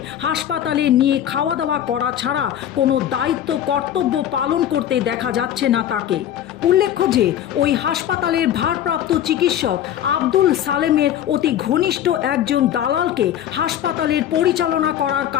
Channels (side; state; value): right; quieter; 10.8 dB